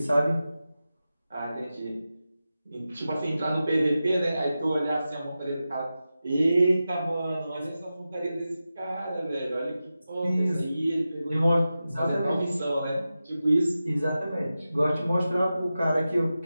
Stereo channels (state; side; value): inverted; both; correlation -0.93